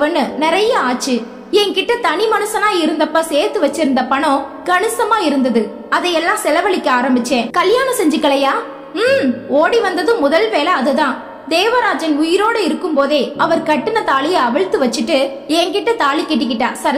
நிறைய ஆச்சு. என்கிட்ட தனி மனுஷனா இருந்தப்ப சேர்த்து வச்சிருந்த பணம் கணிசமா இருந்தது. அதையெல்லாம் செலவழிக்க ஆரம்பிச்சேன். கல்யாணம் செஞ்சுக்கலையா? ஓடி வந்தது முதல் வேலை அதுதான். தேவராஜன் உயிரோடு இருக்கும் போதே அவர் கட்டின தாலிய அவிழ்த்து வச்சுட்டு என்கிட்ட தாலி கட்டிக்கிட்டா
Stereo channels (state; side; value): identical; both; correlation 1.00